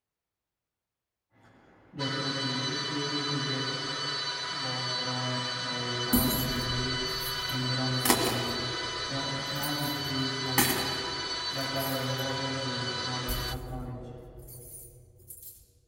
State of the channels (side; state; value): both; identical; correlation 1.00